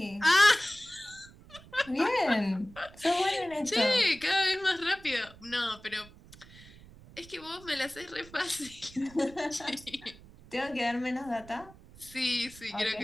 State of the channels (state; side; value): noise; right; rumble, 21 dB below the sound